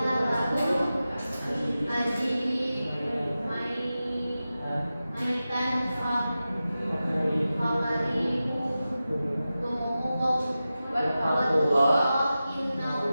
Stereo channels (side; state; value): both; inverted; correlation -0.94